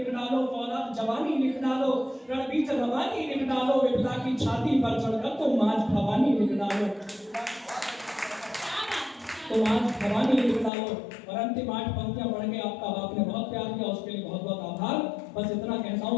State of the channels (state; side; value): drops out; right; at 10.7 s